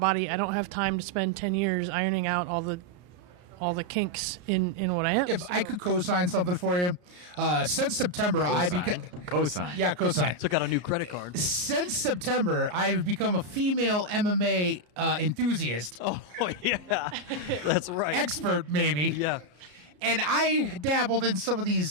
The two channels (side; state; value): left; late; 33 ms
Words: I don't have time to spend 10 years ironing out all the kinks in what I am. If I could co-sign something for you, since September, co-sign. Yeah, co-sign. Took out a new credit card. Since September, I've become a female MMA enthusiast. Oh, yeah. That's right. Expert, maybe. Yeah. And I dabbled in some of